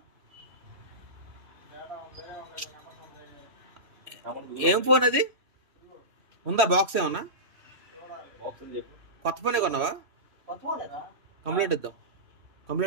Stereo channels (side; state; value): left; late; 3.1 ms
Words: ఏం ఫోన్ అది? ఉందా బాక్స్ ఏమన్నా? కొత్త ఫోనే కొన్నావా? కంప్లైంట్ ఇద్దాం.